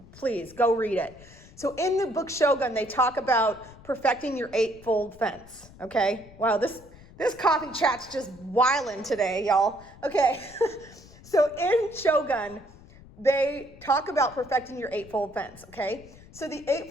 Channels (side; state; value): left; noise; rumble, 21 dB below the sound